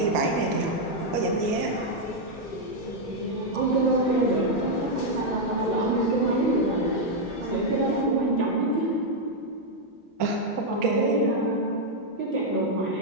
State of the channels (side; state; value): both; normal; correlation -0.01